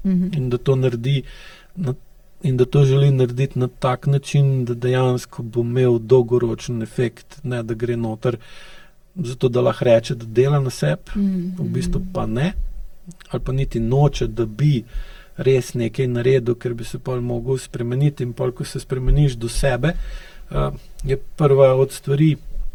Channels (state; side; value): identical; both; correlation 1.00